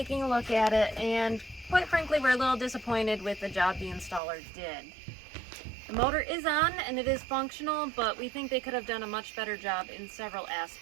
a look at it, and quite frankly we're a little disappointed with the job the installer did. The motor is on and it is functional, but we think they could have done a much better job in several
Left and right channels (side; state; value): left; drops out; at 4.2 s